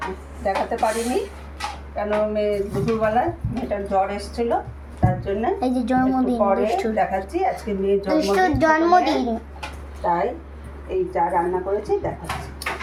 দেখাতে পারিনি কেন দুপুরবেলায় মেয়েটার জ্বর এসেছিল, তার জন্য এই যে জন্মদিন পরে দেখাচ্ছি। আজকে মেয়ের জন্মদিন, তাই এই যা রান্না করেছি দেখাচ্ছি।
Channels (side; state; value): both; identical; correlation 1.00